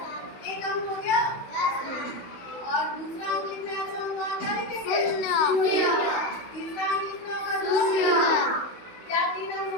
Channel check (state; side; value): late; right; 16 ms